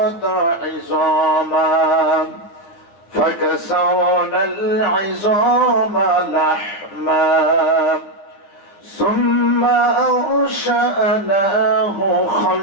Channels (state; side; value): late; right; 9.8 ms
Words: عظاما فكسونا العظام لحما ثم أنشأناه